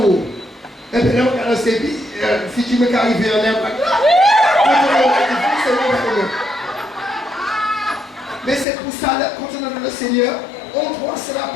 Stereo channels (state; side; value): drops out; right; at 8.7 s